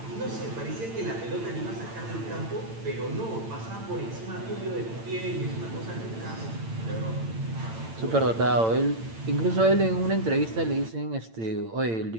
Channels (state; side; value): late; left; 8.9 ms